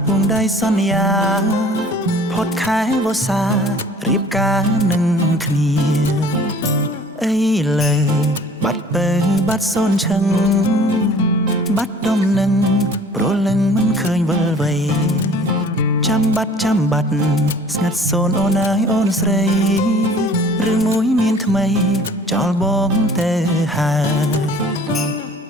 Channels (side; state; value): both; normal; correlation 0.50